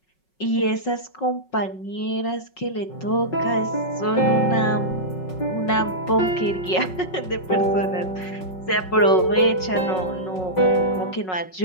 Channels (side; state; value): right; late; 5.4 ms